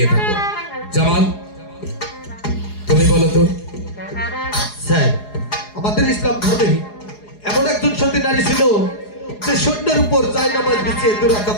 থাকো। জামাল, তুমি বলো তো। স্যার, আমাদের ইসলাম ধর্মে এমন একজন সতী নারী ছিল যে সৈন্যের উপর জায়নামাজ বিছিয়ে দুরাকাত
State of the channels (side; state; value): right; late; 4.8 ms